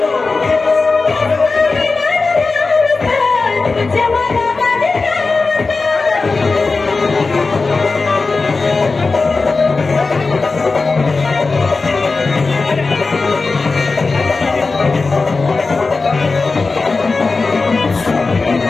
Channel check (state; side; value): quieter; right; 4.0 dB